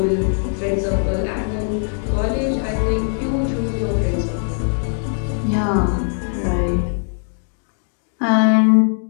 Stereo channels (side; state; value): right; silent; 57 dB below the other